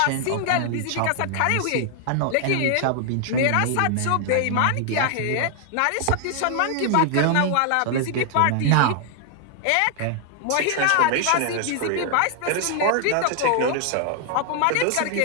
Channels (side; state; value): both; different; correlation 0.00